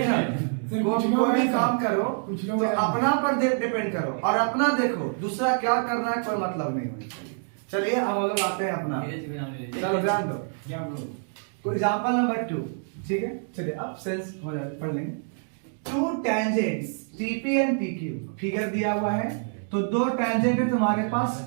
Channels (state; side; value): silent; left; 61 dB below the other